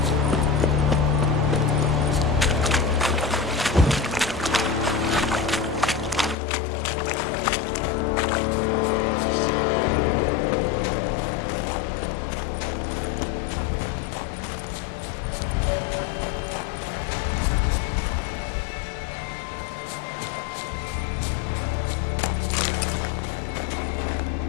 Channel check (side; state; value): right; drops out; at 6.4 s